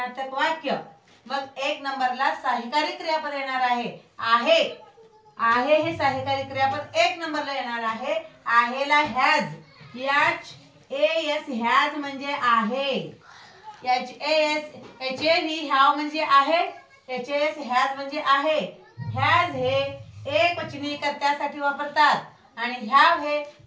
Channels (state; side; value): identical; both; correlation 1.00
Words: वाक्य. मग 1 नंबरला सहाय्यकारी क्रियापद येणार आहे. आहे. आहे हे सहाय्यकारी क्रियापद 1 नंबरला येणार आहे. आहेला हॅज. HAS हॅज म्हणजे आहे. HAV हॅव म्हणजे आहे. HAS हॅज म्हणजे आहे. हॅज हे एकवचनी कर्त्यासाठी वापरतात आणि हॅव हे